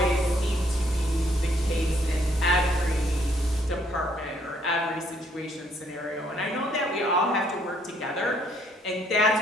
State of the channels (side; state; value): both; normal; correlation 0.67